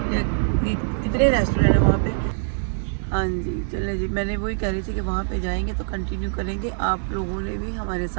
या कितने रेस्टोरेंट है वहाँ पे। हाँ जी चले जी, मैंने वही कह रही थी कि वहाँ पे जाएंगे तो कंटिन्यू करेंगे। आप लोगों ने भी हमारे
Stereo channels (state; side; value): silent; left; 63 dB below the other